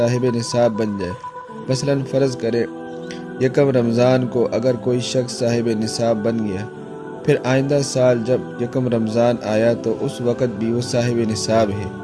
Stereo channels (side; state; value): both; identical; correlation 1.00